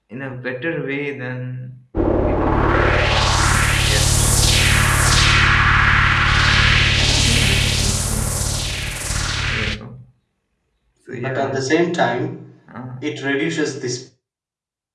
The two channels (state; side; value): identical; both; correlation 1.00